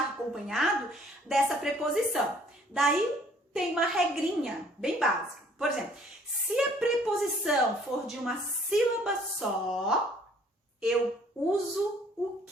acompanhado dessa preposição. Daí tem uma regrinha bem básica. Por exemplo, se a preposição for de uma sílaba só, eu uso o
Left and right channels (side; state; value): both; normal; correlation 0.59